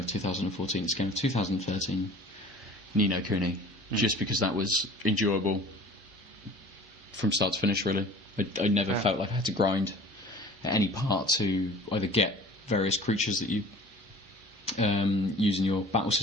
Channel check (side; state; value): both; normal; correlation 0.45